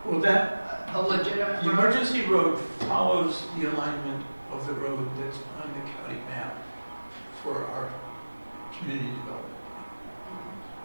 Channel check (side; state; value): both; inverted; correlation -1.00